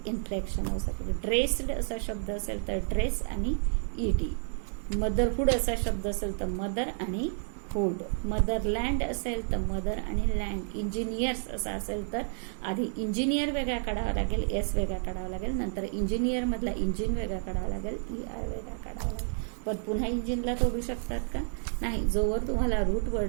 inflectional suffix. Dressed असा शब्द असेल तर ड्रेस आणि ED. मदरहुड असा शब्द असेल तर मदर आणि हुड. मदरलँड असेल तर मदर आणि लँड. इंजिनियर्स असा असेल तर आधी इंजिनियर वेगळा काढावा लागेल एस वेगळा काढावा लागेल. नंतर इंजिनियर मधला इंजिन वेगळा काढावा लागेल ER वेगळा काढावा लागेल. पण पुन्हा इंजिनला तोडू शकतात का नाही. जोवर तुम्हाला रूट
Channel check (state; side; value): silent; left; digital silence